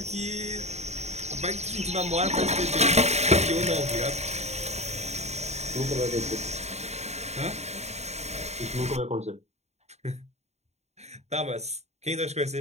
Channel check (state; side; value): late; left; 0.32 ms